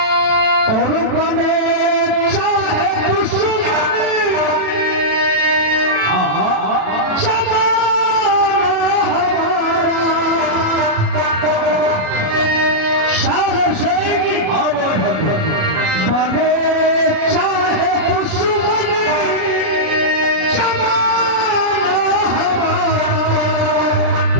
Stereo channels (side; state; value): left; late; 37 ms